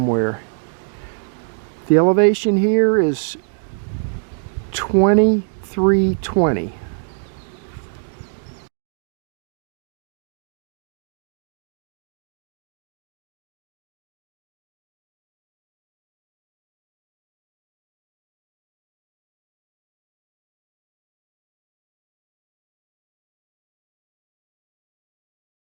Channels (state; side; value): silent; left; digital silence